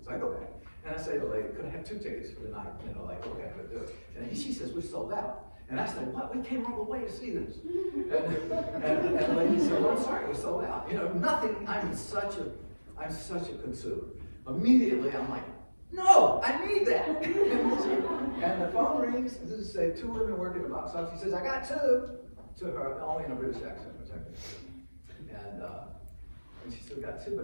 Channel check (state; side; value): inverted; both; correlation -1.00